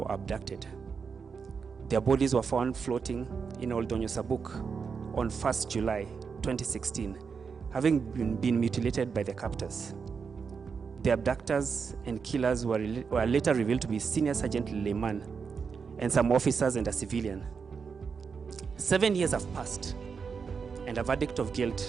abducted. Their bodies were found floating in Old Donyo Sabuk on 1st July 2016, having been mutilated by their captors. The abductors and killers were later revealed to be Senior Sergeant Leyman and some officers and a civilian. 7 years have passed, and a verdict of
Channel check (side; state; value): left; quieter; 5.7 dB